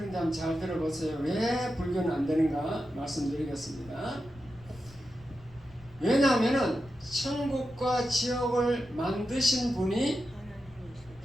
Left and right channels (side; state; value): left; noise; rumble, 23 dB below the sound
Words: 한번 잘 들어보세요. 왜 불교는 안 되는가 말씀드리겠습니다. 왜냐하면 천국과 지옥을 만드신 분이